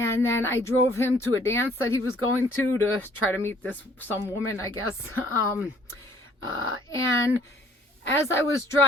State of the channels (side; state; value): both; normal; correlation 0.59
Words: then I drove him to a dance that he was going to try to meet some woman, I guess. And as I was